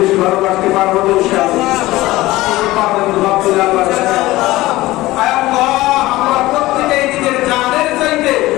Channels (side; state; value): right; quieter; 18.0 dB